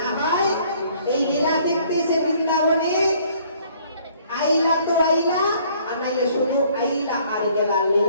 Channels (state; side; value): inverted; both; correlation -0.60